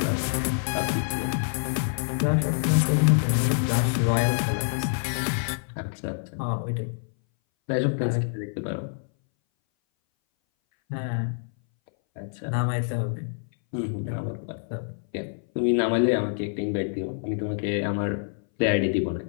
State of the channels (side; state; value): right; silent; 60 dB below the other